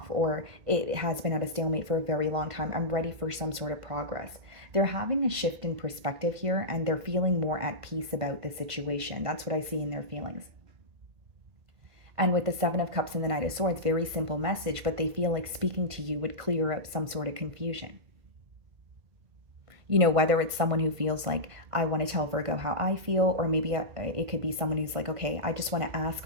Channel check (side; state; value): left; late; 1.5 ms